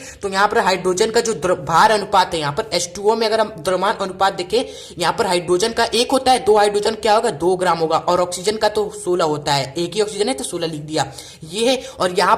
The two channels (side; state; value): both; identical; correlation 1.00